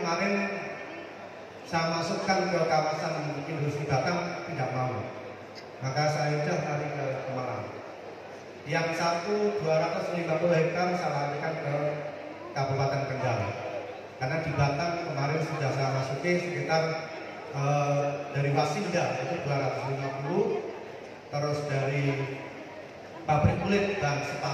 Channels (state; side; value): identical; both; correlation 1.00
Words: saya masukkan ke kawasan industri Batam tidak mau, maka saya sudah lari ke Pemalang. Yang 250 hektar saya larikan ke Kabupaten Kendal. Karena di Batam kemarin sudah saya masuki sekitar dari Wasinda itu 250, terus dari pabrik kulit dan